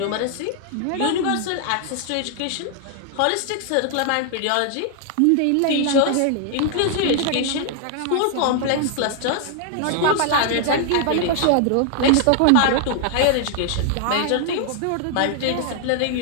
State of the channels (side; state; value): both; different; correlation 0.00